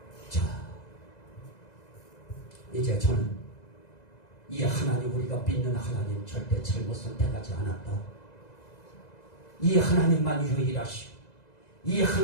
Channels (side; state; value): right; late; 2.0 ms